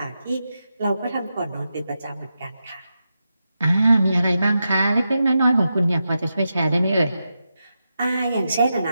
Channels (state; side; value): inverted; both; correlation -0.88